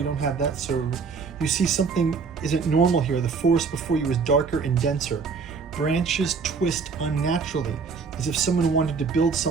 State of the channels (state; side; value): quieter; left; 5.2 dB